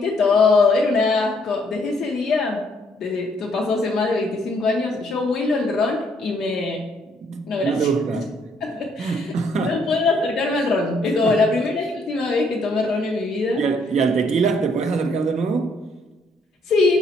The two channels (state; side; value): normal; both; correlation 0.68